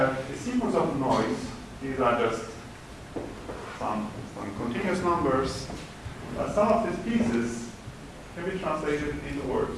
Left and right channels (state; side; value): identical; both; correlation 1.00